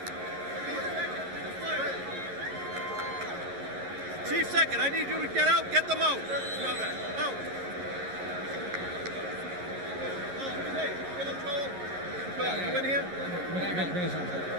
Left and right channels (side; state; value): left; late; 11 ms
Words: Chief second, I need you to get out, get them out. Out. You in here?